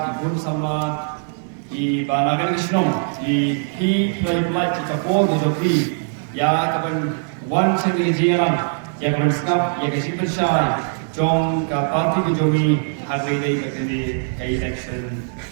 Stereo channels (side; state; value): left; silent; digital silence